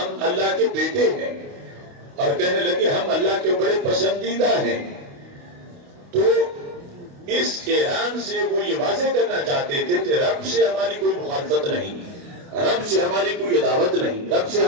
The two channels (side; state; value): left; late; 28 ms